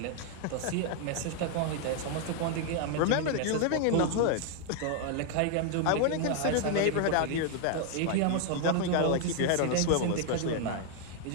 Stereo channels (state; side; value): different; both; correlation 0.00